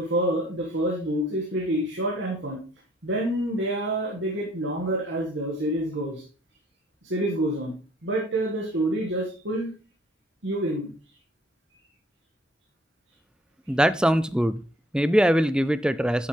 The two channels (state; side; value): normal; both; correlation 0.62